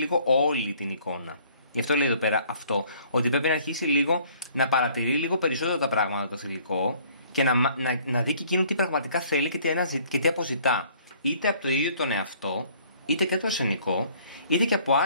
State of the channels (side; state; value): both; inverted; correlation -0.57